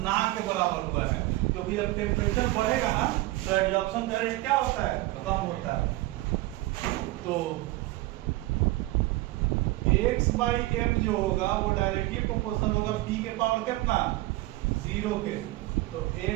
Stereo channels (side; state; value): left; quieter; 18.9 dB